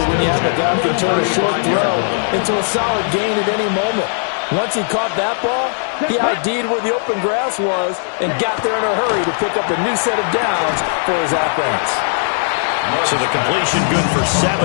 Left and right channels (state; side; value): silent; right; 68 dB below the other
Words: when you have a guy who can turn a short throw into a solid gain at any moment. Once he caught that ball, he ID'd where the open grass was and got there in a hurry to pick up a new set of downs for his offense. So the completion good for 7